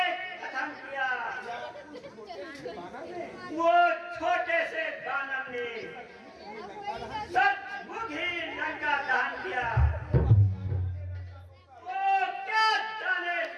कथन किया। वो छोटे से दानव ने सचमुच ही लंका दहन किया। वो क्या जाने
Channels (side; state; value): both; identical; correlation 1.00